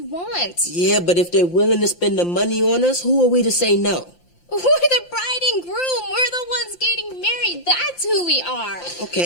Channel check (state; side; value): late; right; 5.8 ms